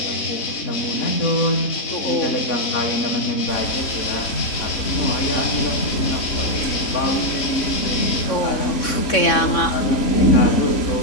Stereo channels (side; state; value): right; late; 3.6 ms